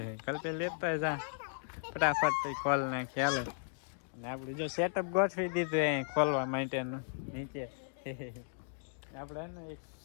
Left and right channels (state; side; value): silent; right; digital silence